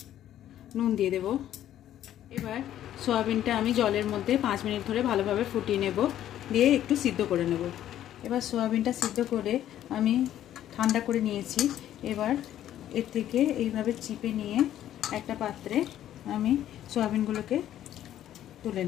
নুন দিয়ে দেব। এবার সয়াবিনটা আমি জলের মধ্যে 5 মিনিট ধরে ভালোভাবে ফুটিয়ে নেব, দিয়ে একটু সিদ্ধ করে নেব। এবার সয়াবিনটা সিদ্ধ করে আমি ঠান্ডা করে নিয়েছি। এবার এর থেকে এইভাবে চিপে নিয়ে একটা পাত্রে আমি সয়াবিনগুলোকে তুলে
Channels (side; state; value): right; quieter; 11.8 dB